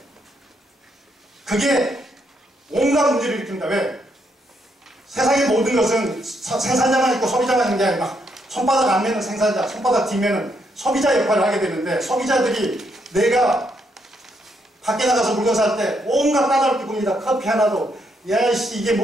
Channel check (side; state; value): both; normal; correlation 0.76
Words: 그게 온갖 문제를 일으킵니다. 왜? 세상의 모든 것은 생산자만 있고 소비자만 있는 게 아니라 손바닥 앞면은 생산자, 손바닥 뒷면은 소비자 역할을 하게 되는데, 소비자들이 내가 밖에 나가서 물건 살 때 온갖 까다롭게 봅니다. 커피 하나도 야씨 이게